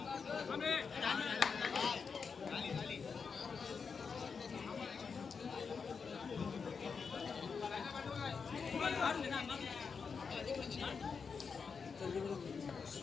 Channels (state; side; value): quieter; right; 5.6 dB